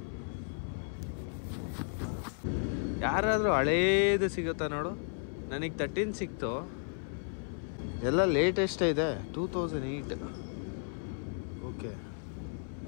ಯಾರಾದರೂ ಹಳೇದು ಸಿಗುತ್ತಾ ನೋಡು. ನನಗೆ 13 ಸಿಕ್ತು. ಎಲ್ಲ ಲೇಟೆಸ್ಟೇ ಇದೆ. 2008. ಓಕೆ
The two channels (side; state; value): right; silent; 55 dB below the other